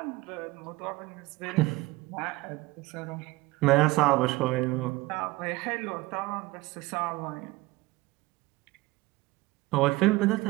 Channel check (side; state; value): left; quieter; 20.7 dB